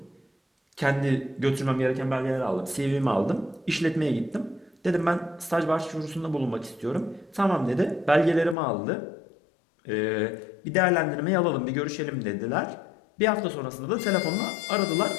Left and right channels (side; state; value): right; drops out; at 8.6 s